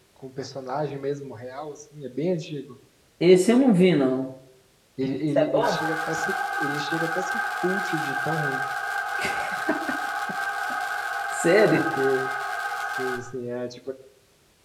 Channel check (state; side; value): identical; both; correlation 1.00